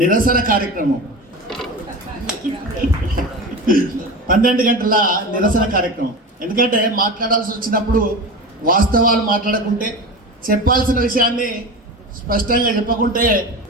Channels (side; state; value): both; normal; correlation 0.28